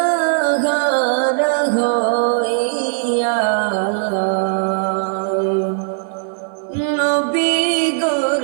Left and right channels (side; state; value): left; silent; 59 dB below the other